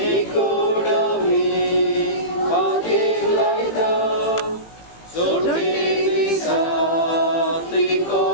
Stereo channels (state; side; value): late; right; 18 ms